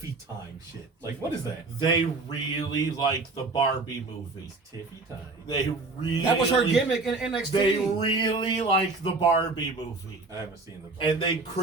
time shit? Like, what is that? They really like the Barbie movie. Tiffy time. They really... That was her gimmick in NXT. They really like the Barbie movie. I haven't seen the... And they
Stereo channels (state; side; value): quieter; left; 3.6 dB